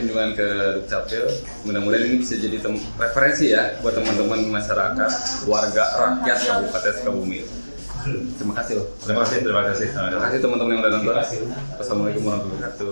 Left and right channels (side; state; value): both; inverted; correlation -1.00